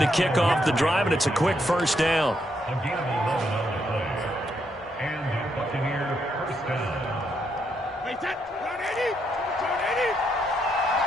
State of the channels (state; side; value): normal; both; correlation 0.77